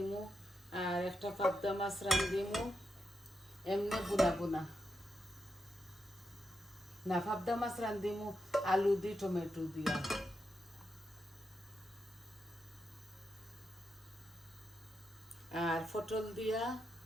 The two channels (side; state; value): both; normal; correlation 0.85